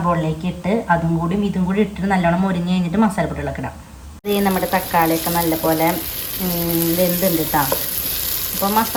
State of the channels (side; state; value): both; identical; correlation 1.00